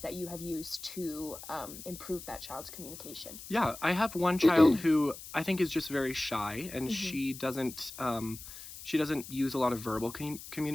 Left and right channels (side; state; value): left; noise; hiss, 13 dB below the sound